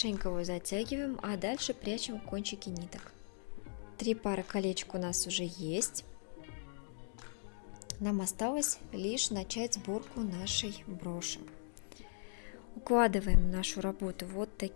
его затягиваем, а дальше прячем кончики ниток. 3 пары колечек у нас уже есть. Нам осталось лишь начать сборку нашей броши. Укладываем нашу работу вот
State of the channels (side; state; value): right; silent; digital silence